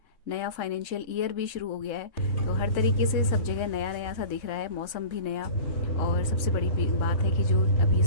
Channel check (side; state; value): right; late; 3.7 ms